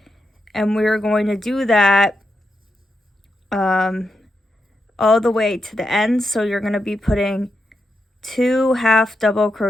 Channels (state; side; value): normal; both; correlation 0.85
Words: and we're going to do that all the way to the end. So you're going to be putting 2 half double